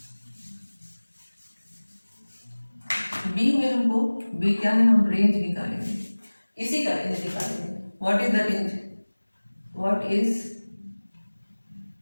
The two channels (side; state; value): both; inverted; correlation -1.00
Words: बी में हमको, बी क्या है, हम रेंज निकालेंगे, इसी का रेंज निकालेंगे। What is the range, what is